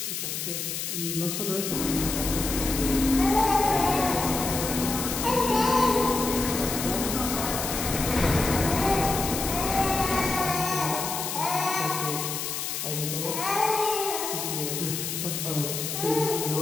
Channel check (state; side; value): noise; left; hiss, 4 dB below the sound